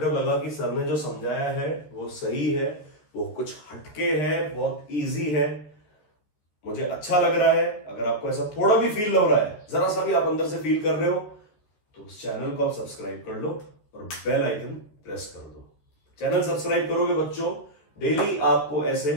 लगा कि सर ने जो समझाया है वो सही है, वो कुछ हटके है, बहुत इजी है, मुझे अच्छा लग रहा है। अगर आपको ऐसा थोड़ा भी फील हो रहा है, जरा सा भी आप अंदर से फील कर रहे हो, तो उस चैनल को आप सब्सक्राइब कर लो और बेल आइकन प्रेस कर दो। चैनल सब्सक्राइब करोगे बच्चों, डेली आपको ऐसे,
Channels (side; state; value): right; late; 14 ms